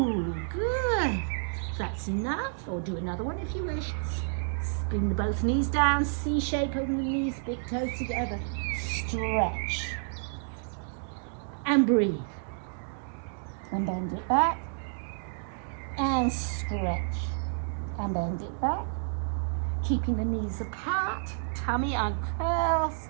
good. That's enough, or do another one if you wish. Bring the both knees down, C shape, open the knees, big toes together. Stretch. And breathe. And bend it back. And stretch. And bend it back. Keeping the knees apart, tummy uncurls.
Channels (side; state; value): left; silent; digital silence